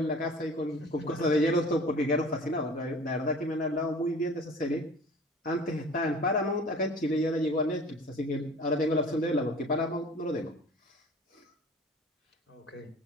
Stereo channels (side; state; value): both; normal; correlation 0.44